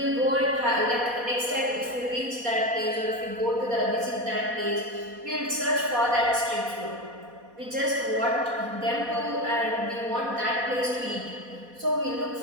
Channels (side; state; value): left; late; 4.2 ms